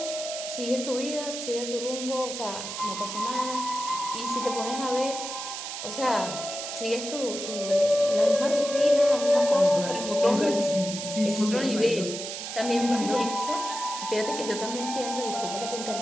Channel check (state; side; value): noise; right; hiss, 7 dB below the sound